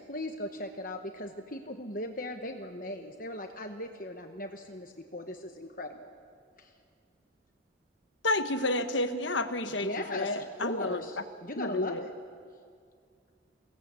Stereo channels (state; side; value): normal; both; correlation -0.12